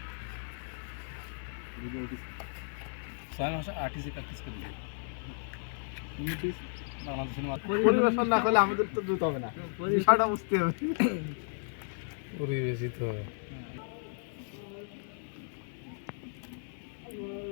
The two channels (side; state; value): right; silent; digital silence